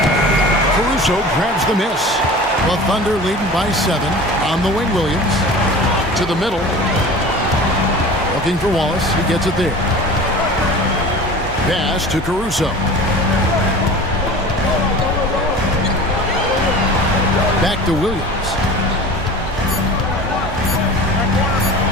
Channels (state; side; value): normal; both; correlation 0.38